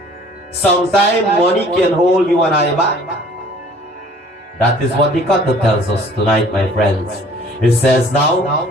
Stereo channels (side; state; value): both; normal; correlation 0.53